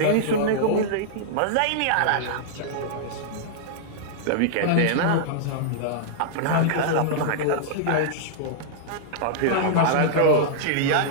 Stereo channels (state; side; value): different; both; correlation -0.02